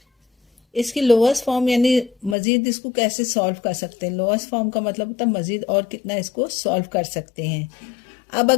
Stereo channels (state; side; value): drops out; right; at 2.4 s